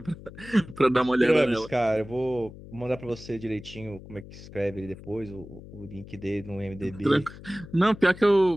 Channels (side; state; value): left; noise; hum, 16 dB below the sound